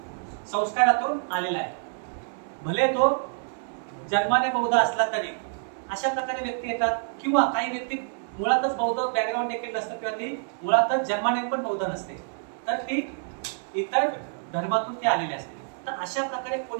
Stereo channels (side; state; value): left; silent; digital silence